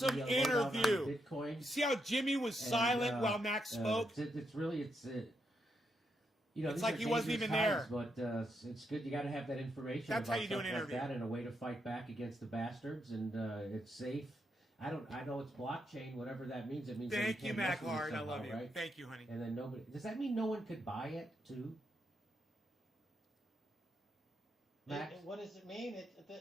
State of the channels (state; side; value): normal; both; correlation 0.81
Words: interview. Bitcoin. You see how Jimmy was silent while Max spoke? It's it's like he wasn't even there. But it's good. You got to have that information. That's about how you do an stuff interview. Like that, and a way to fight back against the bastards, and it's safe. I know it's blockchain, whatever that means. It means Thank that you, can't Mac mess with it Hard. I somehow, love you. right? Thank you, honey. And then nobody. Does that mean no one could buy it too? Max? What does it mean?